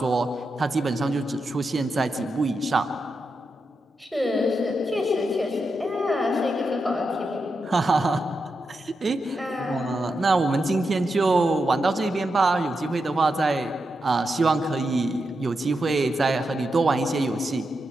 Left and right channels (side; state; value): both; normal; correlation 0.87